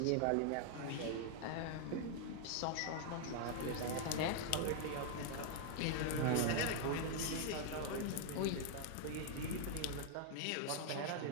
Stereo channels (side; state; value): both; different; correlation 0.00